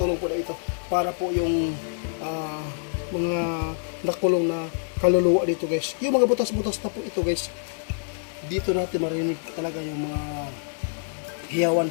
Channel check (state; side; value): silent; right; digital silence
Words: po na ito para po yung mga nakulong na kaluluwa dito guys. Yung mga butas-butas na po ito guys. Dito natin marinig talaga yung mga